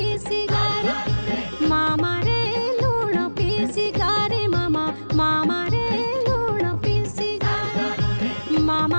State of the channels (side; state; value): both; inverted; correlation -1.00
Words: गारे मामा रे लूण पीसी गारे मामा मामा रे लूण पीसी गारे